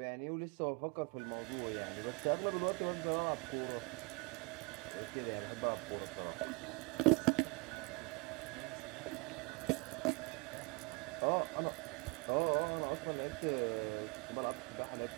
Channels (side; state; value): left; quieter; 27.6 dB